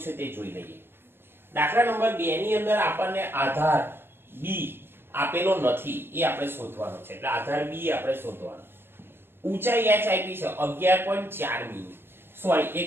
તે જોઈ લઈએ। દાખલા નંબર 2 ની અંદર આપણને આધાર b આપેલો નથી એ આપણે શોધવાનો છે, એટલે આધાર બી આપણે શોધવાનો. ઊંચાઈ h આપી છે 11.4 મીમી, સોરી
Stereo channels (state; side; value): late; left; 0.11 ms